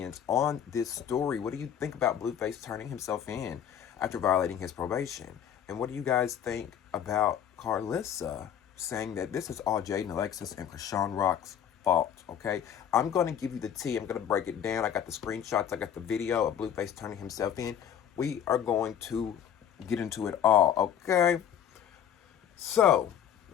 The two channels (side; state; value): right; quieter; 9.3 dB